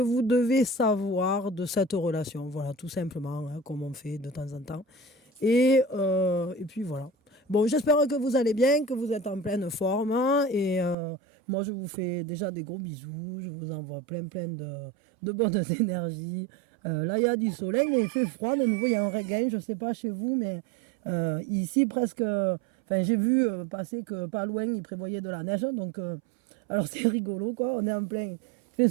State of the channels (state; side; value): drops out; left; at 11.0 s